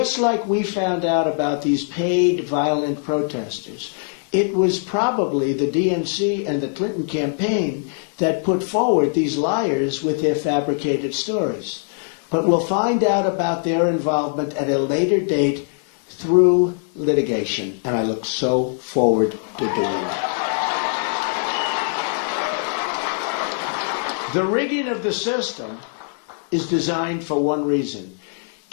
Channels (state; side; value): silent; right; 64 dB below the other